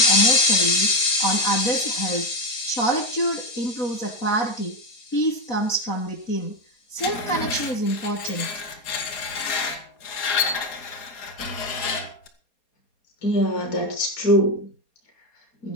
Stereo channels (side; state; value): right; late; 4.3 ms